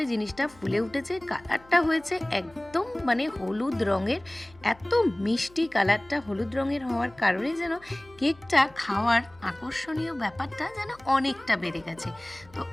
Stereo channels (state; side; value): noise; left; hum, 25 dB below the sound